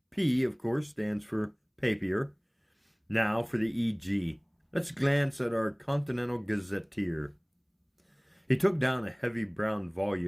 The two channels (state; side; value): identical; both; correlation 1.00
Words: P, of course, stands for papier. Now for the EG. Let's glance at our Continental Gazetteer. He took down a heavy brown